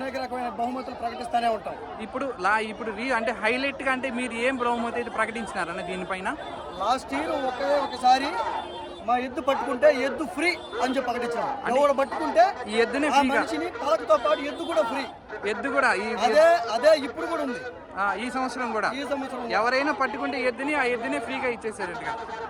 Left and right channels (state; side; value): identical; both; correlation 1.00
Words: రకమైన బహుమతులు ప్రకటిస్తూనే ఉంటాం. ఇప్పుడు అంటే హైలైట్ గా అంటే మీరు ఏం బహుమతి అయితే ప్రకటించినారన్న దీనిపైన? లాస్ట్ ఇయర్ ఒకసారి మా ఎద్దు పట్టుకుంటే ఎద్దు ఫ్రీ అని చెప్పి ప్రకటించాం. ఎవరు పట్టుకుంటే ఈ ఎద్దుని మనిషిని పలకతో పాటు ఎద్దు కూడా ఫ్రీ. ఎద్దు కూడా అదే ఇప్పుడు కూడా ఉంది. ఈ సంవత్సరం కూడా ఎవరైనా పట్టుకుంటే ఎద్దుని ఆ ఎద్దునే ఫ్రీగా ఇచ్చేసారట్టుగా